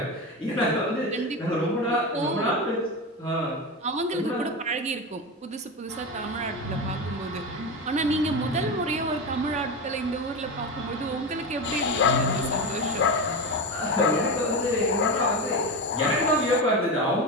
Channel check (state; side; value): normal; both; correlation 0.18